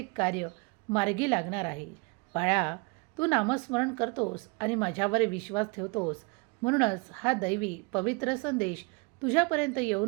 कार्य मार्गी लागणार आहे. बाळा, तू नामस्मरण करतोस आणि माझ्यावर विश्वास ठेवतोस, म्हणूनच हा दैवी पवित्र संदेश तुझ्यापर्यंत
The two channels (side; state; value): left; quieter; 29.6 dB